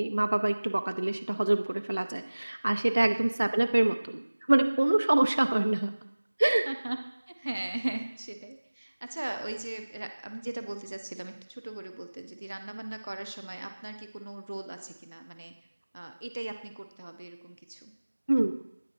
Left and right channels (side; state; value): both; inverted; correlation -1.00